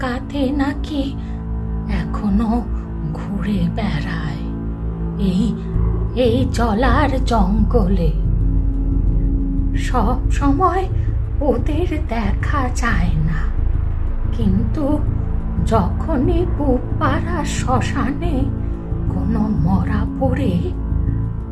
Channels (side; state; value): both; identical; correlation 1.00